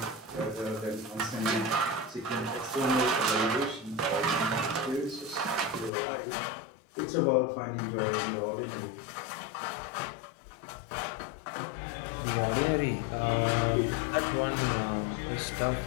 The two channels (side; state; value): right; drops out; at 5.9 s